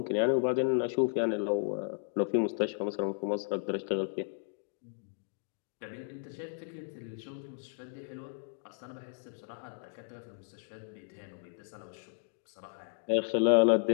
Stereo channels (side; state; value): right; silent; digital silence